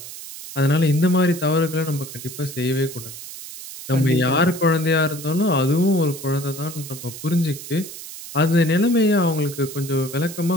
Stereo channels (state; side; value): noise; right; hiss, 12 dB below the sound